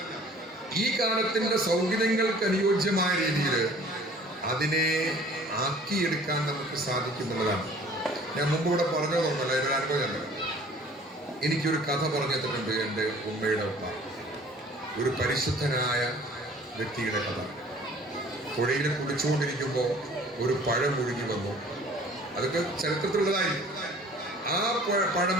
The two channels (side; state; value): both; normal; correlation 0.51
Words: ഈ കാലത്തിന്റെ സൗകര്യങ്ങൾക്ക് അനുയോജ്യമായ രീതിയിൽ അതിനെ ആക്കിയെടുക്കാൻ നമുക്ക് സാധിക്കുന്നുള്ളതാണ്. ഞാൻ മുമ്പ് ഇവിടെ പറഞ്ഞതൊന്നുമല്ല, ഇതൊരു അനുഭവമല്ല. എനിക്കൊരു കഥ പറഞ്ഞു തന്നിട്ടുണ്ട് എൻ്റെ ഉമ്മയുടെ ഉമ്മ. ഒരു പരിശുദ്ധനായ വ്യക്തിയുടെ കഥ. പുഴയിൽ കുടിച്ചുകൊണ്ടിരിക്കുമ്പോൾ ഒരു പഴം ഒഴുകി വന്നു. അതൊക്കെ ചരിത്രത്തിലുള്ളതായി. ആ പഴം